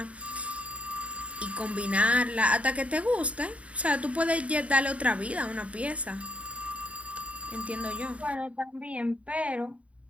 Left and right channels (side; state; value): left; late; 0.065 ms